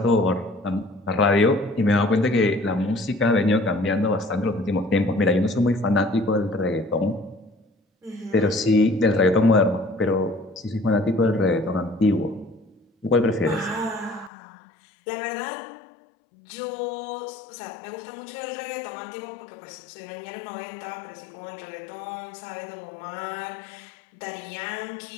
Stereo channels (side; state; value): right; drops out; at 14.3 s